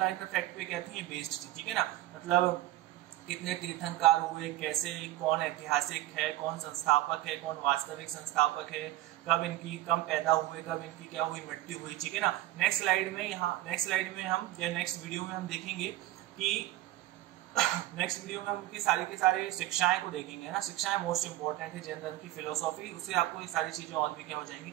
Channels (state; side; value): quieter; left; 15.8 dB